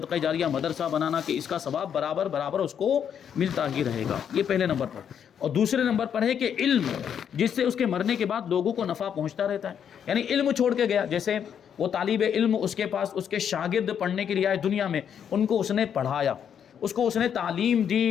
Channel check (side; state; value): right; quieter; 8.3 dB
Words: جاریہ، مدرسہ بنانا کہ اس کا ثواب برابر اس کو ملتا ہی رہے گا، یہ پہلے نمبر پر۔ اور دوسرے نمبر پر ہے کہ علم، جس سے اس کے مرنے کے بعد لوگوں کو نفع پہنچتا رہتا ہے، یعنی علم چھوڑ کے گیا، جیسے وہ طالب علم، اس کے پاس اس کے شاگرد پڑھنے کے لیے آئے دنیا میں، ان کو اس نے پڑھایا، اس کو اس نے تعلیم